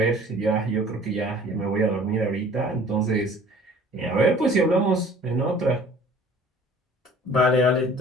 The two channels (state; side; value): normal; both; correlation 0.49